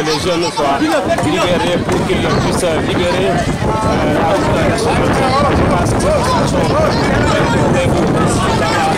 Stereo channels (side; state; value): both; identical; correlation 1.00